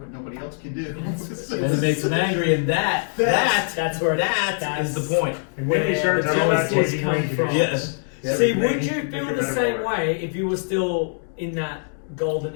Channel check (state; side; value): silent; right; 63 dB below the other